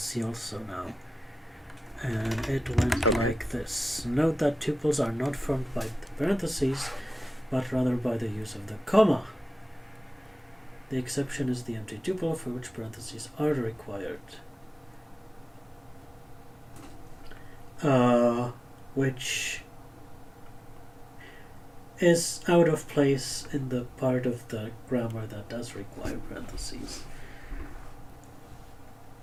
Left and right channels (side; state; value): both; normal; correlation 0.96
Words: also now. And it went like this. Note that tuples are not formed by the parentheses, but rather by the use of the comma. The exception is the empty tuple, for which parentheses are required. Which is out of place in the part of the grammar that does require parentheses.